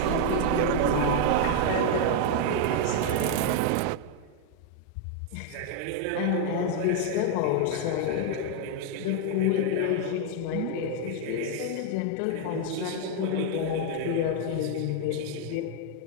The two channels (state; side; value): different; both; correlation 0.00